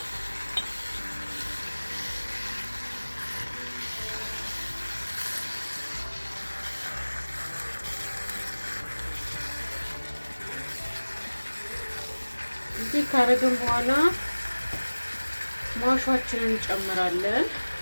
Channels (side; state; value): both; inverted; correlation -1.00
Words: እዚህ ካረግን በኋላ ማሻችንን እንጨምራለን